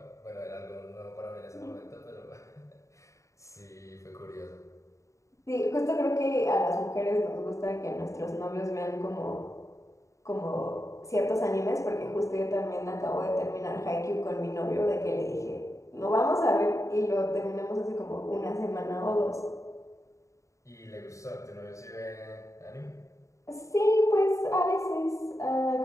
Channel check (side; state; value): right; late; 0.15 ms